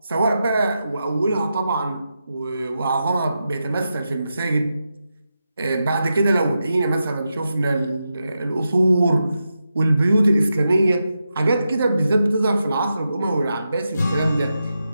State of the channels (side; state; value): both; inverted; correlation -0.88